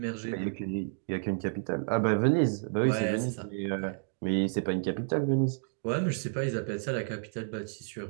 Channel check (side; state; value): left; silent; digital silence